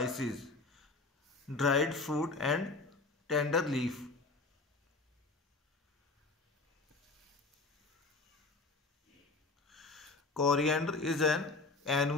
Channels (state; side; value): quieter; right; 3.6 dB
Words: dried fruit and tender leaf. Coriander is an